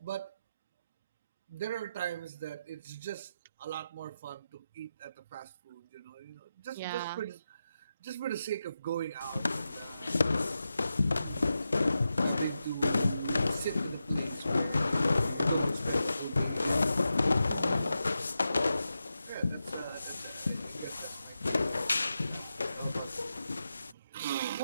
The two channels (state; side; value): inverted; both; correlation -0.89